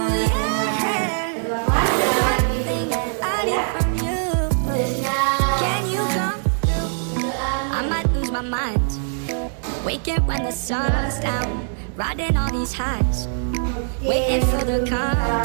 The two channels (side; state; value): left; silent; digital silence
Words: Kedua kelas selamat ya. I might lose my mind. Waking when the sun's down, riding all these highs, waiting for the